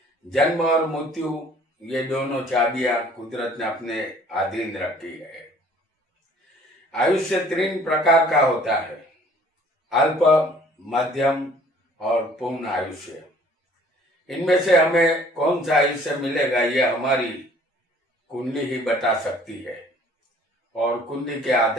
जन्म और मृत्यु ये दोनों चाबियां कुदरत ने अपने अधीन रखी है। आयुष्य 3 प्रकार का होता है: अल्प, मध्यम और पूर्ण आयुष्य। इनमें से हमें कौन सा आयुष्य मिलेगा यह हमारी कुंडली ही बता सकती है, और कुंडली के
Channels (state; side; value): normal; both; correlation 0.55